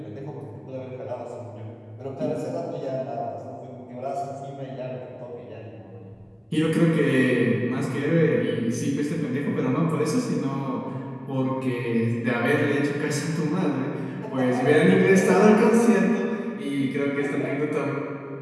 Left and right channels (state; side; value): identical; both; correlation 1.00